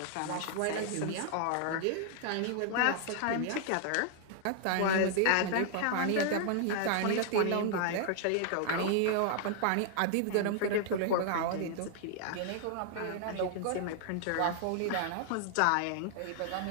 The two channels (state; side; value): different; both; correlation 0.00